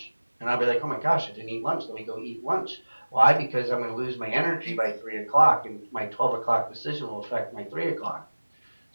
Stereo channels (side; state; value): both; inverted; correlation -1.00